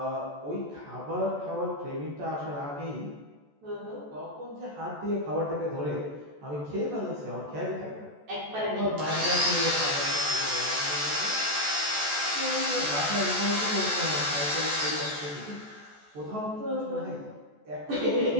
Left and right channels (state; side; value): late; left; 14 ms